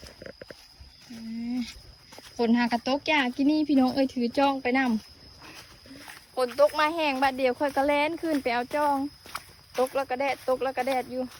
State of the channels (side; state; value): both; identical; correlation 1.00